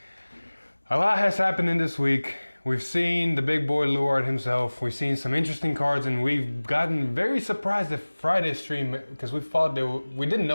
A lot has happened in this week. We've seen the big boy Luard himself. We've seen some interesting cards, and we've gotten very surprised at Friday's stream because we thought we didn't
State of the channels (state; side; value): inverted; both; correlation -1.00